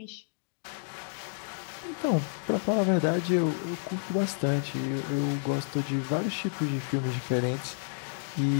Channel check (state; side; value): silent; right; digital silence